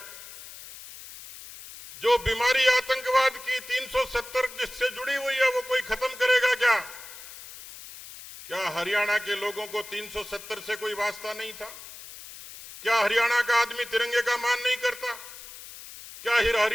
जो बीमारी आतंकवाद की 370 जिससे जुड़ी हुई है वो कोई खत्म करेगा क्या? क्या हरियाणा के लोगों को 370 से कोई वास्ता नहीं था? क्या हरियाणा का आदमी तिरंगे का मान नहीं करता? क्या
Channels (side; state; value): left; noise; hiss, 15 dB below the sound